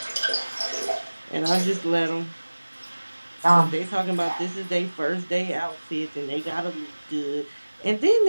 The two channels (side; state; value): both; inverted; correlation -1.00